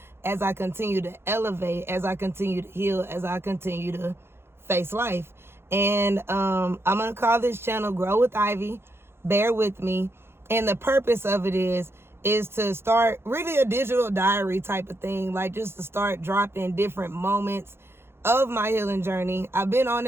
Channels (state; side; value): late; left; 0.12 ms